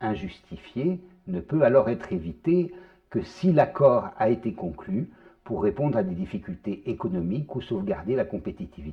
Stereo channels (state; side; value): identical; both; correlation 1.00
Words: ne peut alors être évitée que si l'accord a été conclu pour répondre à des difficultés économiques ou sauvegarder la